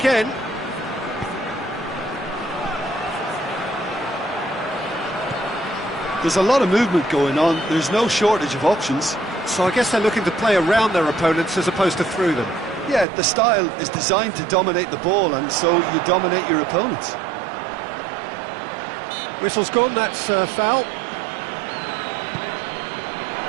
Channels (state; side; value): drops out; left; at 13.1 s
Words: There's a lot of movement going on. There's no shortage of options. So I guess they're looking to play around their opponents as opposed to through them. Yeah, the style is designed to dominate the ball, and so you dominate your opponents. Whistle's gone, that's foul.